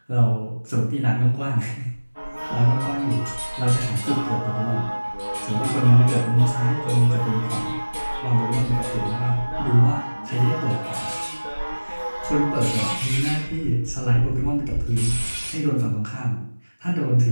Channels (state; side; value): inverted; both; correlation -1.00